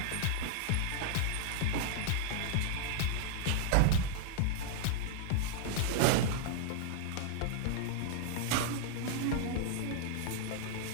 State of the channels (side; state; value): both; different; correlation 0.00